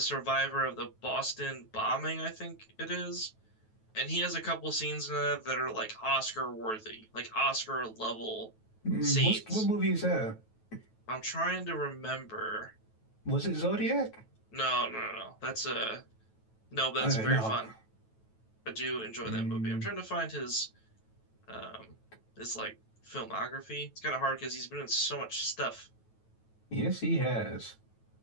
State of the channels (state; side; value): late; right; 9.2 ms